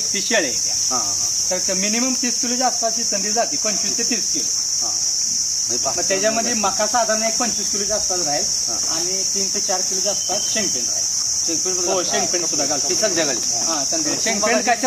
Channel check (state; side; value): identical; both; correlation 1.00